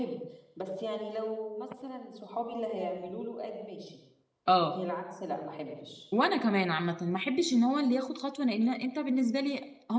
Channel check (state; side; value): identical; both; correlation 1.00